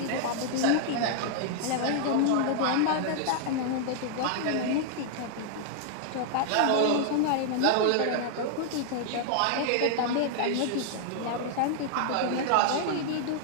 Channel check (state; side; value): different; both; correlation -0.01